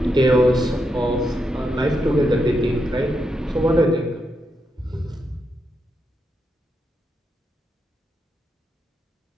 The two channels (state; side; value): normal; both; correlation 0.83